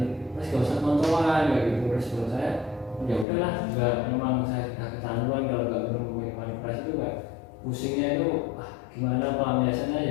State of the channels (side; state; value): right; drops out; at 3.2 s